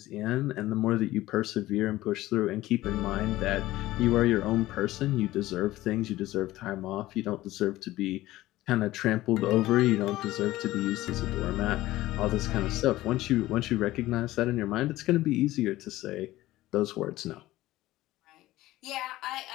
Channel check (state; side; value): quieter; right; 16.5 dB